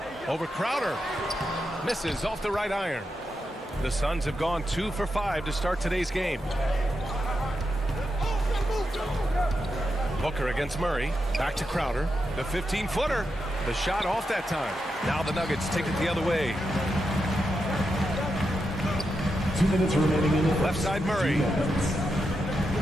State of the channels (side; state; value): both; normal; correlation 0.86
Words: Over Crowder. Misses off the right iron. The Suns have gone 2 for 5 to start today's game. Booker against Murray. Back to Crowder. The 15-footer. The shot off that time. Now the Nuggets take it the other way. 2 minutes remaining in the left side Murray.